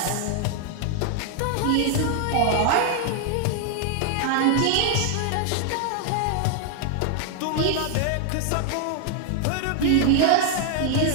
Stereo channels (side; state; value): both; different; correlation 0.00